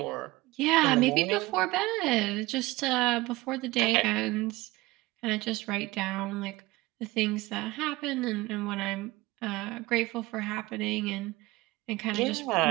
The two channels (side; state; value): left; quieter; 20.3 dB